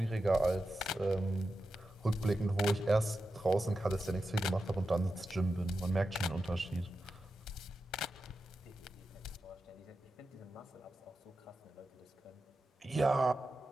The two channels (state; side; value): normal; both; correlation 0.91